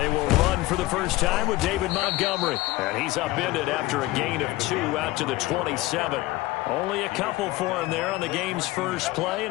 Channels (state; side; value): quieter; right; 18.8 dB